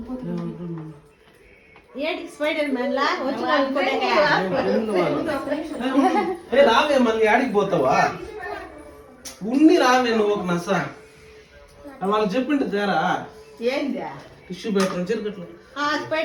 ఏంటి స్పైడర్ మ్యాన్ లా రావే మళ్ళీ ఆడికి పోతావా ఉన్ని రావే నువ్వు ఒక నస వాళ్ళకి చెప్పిండు తేరా ఏంది టిష్యూ పేపర్ చెరుకట్లు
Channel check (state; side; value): identical; both; correlation 1.00